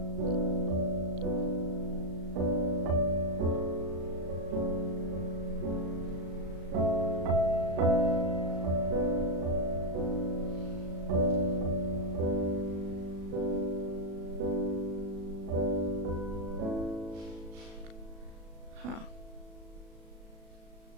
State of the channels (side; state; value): left; late; 36 ms